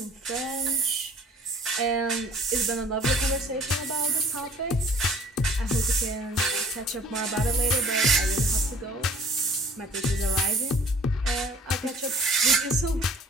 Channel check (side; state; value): both; normal; correlation 0.52